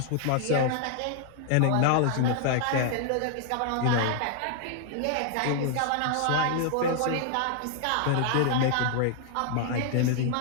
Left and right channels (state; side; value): different; both; correlation 0.00